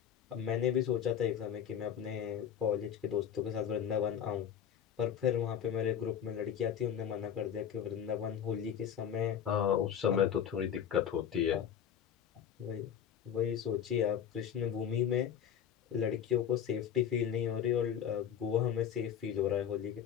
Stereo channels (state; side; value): quieter; right; 9.0 dB